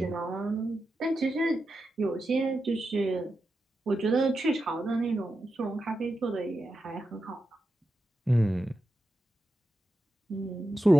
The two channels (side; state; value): both; normal; correlation 0.89